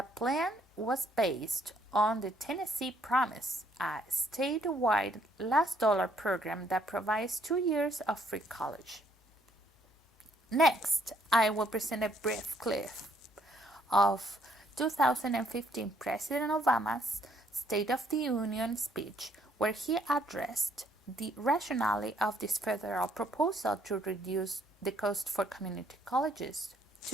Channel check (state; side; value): normal; both; correlation 0.68